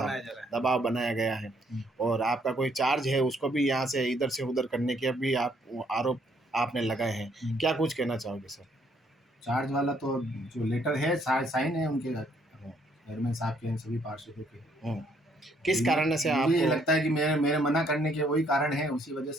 दबाव बनाया गया है और आपका कोई चार्ज है उसको भी यहाँ से इधर से उधर करने के भी आप आरोप आपने लगाए हैं। क्या कुछ कहना चाहोगे सर? चार्ज वाला तो जो लेटर है साइन है उनके चेयरमैन साहब के, सभी पार्षदों के। किस कारण से आपको मुझे लगता है कि मेरे मना करने के वही कारण है, उसी वजह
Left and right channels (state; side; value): normal; both; correlation 0.68